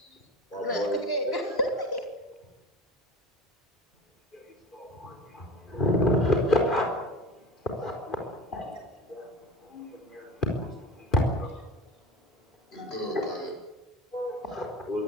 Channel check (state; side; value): normal; both; correlation 0.34